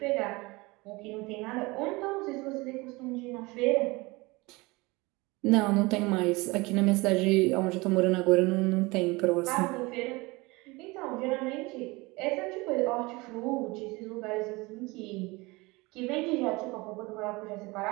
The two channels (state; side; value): quieter; left; 23.7 dB